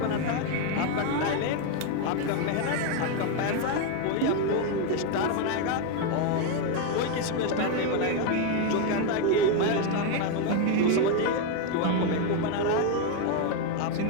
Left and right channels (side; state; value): both; different; correlation 0.01